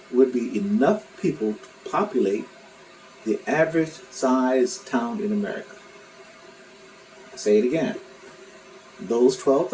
would be enough people to populate the average size town in America. I'll say it again. Those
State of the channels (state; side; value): identical; both; correlation 1.00